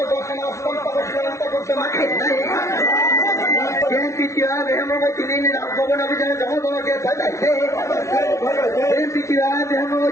বাসনা অন্তর শ্রীলঙ্কা করতে মাঠে নাই বিএনপি কিভাবে হেমবতী নিয়ে রাজভবন অভিযানে জনগণকে পাঠাইছে বিএনপি কিভাবে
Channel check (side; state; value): right; late; 0.14 ms